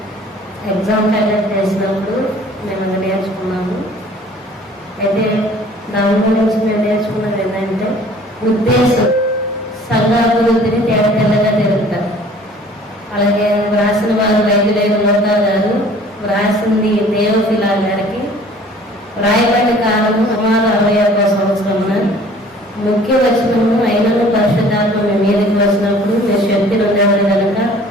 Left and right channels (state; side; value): normal; both; correlation 0.51